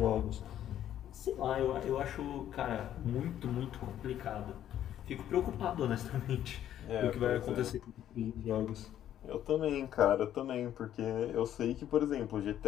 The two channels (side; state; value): right; quieter; 11.2 dB